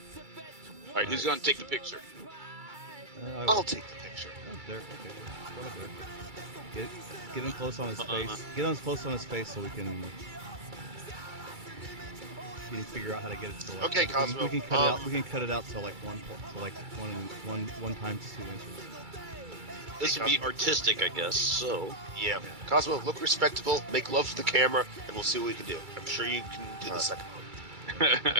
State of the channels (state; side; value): late; left; 2.3 ms